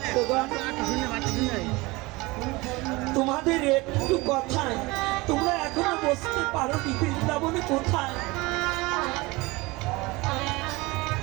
তোমাদের একটু কথায় তোমরা এখনো বুঝতে পারো নি বৃন্দাবনে কোথায়।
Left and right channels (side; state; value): left; quieter; 22.8 dB